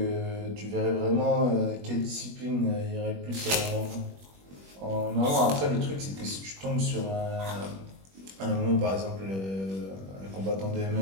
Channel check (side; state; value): left; late; 21 ms